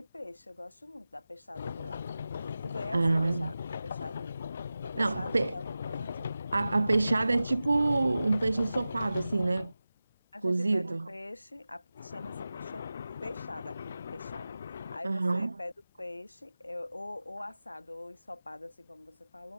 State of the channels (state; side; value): inverted; both; correlation -0.95